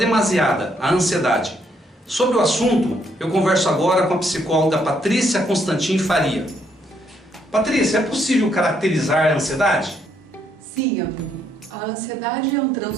a ansiedade. Sobre o assunto, eu converso agora com a psicóloga Patrícia Constantin Faria. Patrícia, é possível caracterizar a ansiedade? Sim, amigo. A ansiedade é um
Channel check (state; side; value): normal; both; correlation 0.72